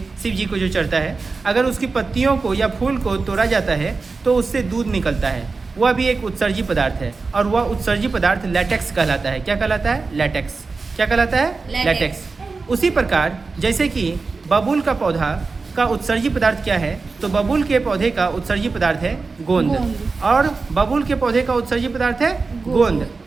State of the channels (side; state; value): left; quieter; 4.2 dB